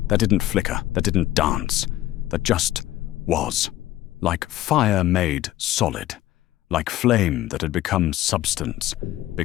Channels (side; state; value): right; quieter; 14.8 dB